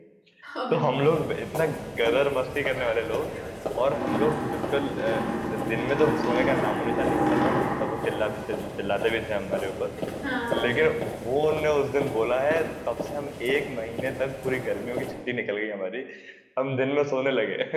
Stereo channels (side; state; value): both; identical; correlation 1.00